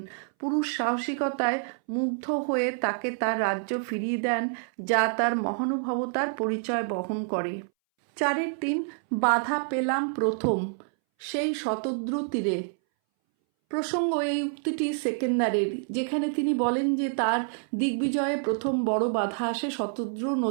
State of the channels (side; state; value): left; silent; 60 dB below the other